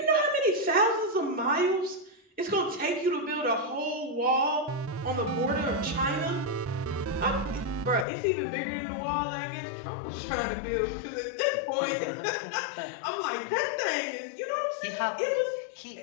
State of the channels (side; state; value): right; drops out; at 8.1 s